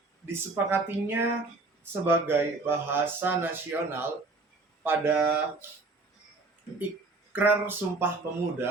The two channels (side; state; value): left; quieter; 3.5 dB